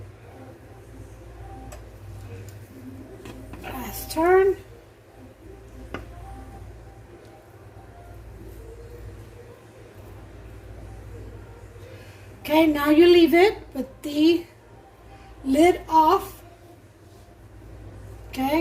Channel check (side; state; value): both; identical; correlation 1.00